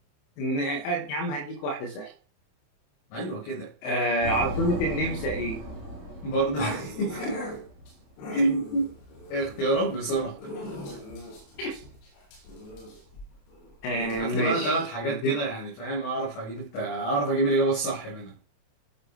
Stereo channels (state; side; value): late; right; 27 ms